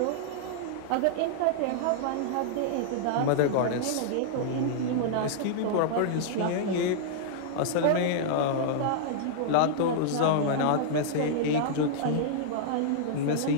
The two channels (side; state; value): both; different; correlation -0.01